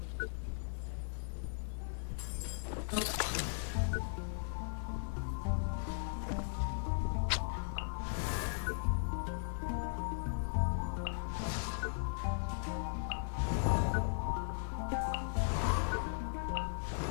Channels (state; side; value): silent; right; 53 dB below the other